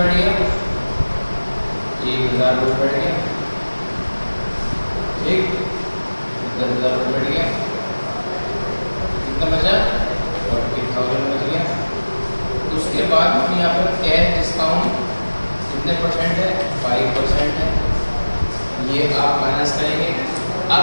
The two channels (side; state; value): both; inverted; correlation -1.00